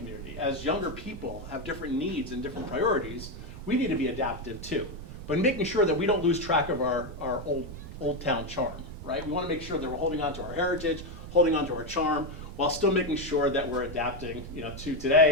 as younger people have different needs and different priorities, we need to be adaptive too. But making sure that we don't lose track of our old town charm, right? We want to make sure that we're holding on to our heritage, holding on to our charm, while still making sure that we're adapting, you know, to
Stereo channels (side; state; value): right; noise; rumble, 14 dB below the sound